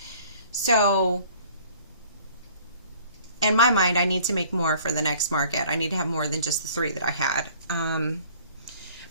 So in my mind, I need to make more for the next market. I need to have more than just the 3 that I had.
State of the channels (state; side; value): inverted; both; correlation -0.53